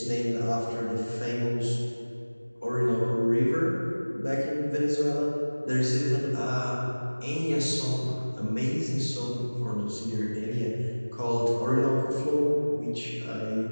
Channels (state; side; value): inverted; both; correlation -1.00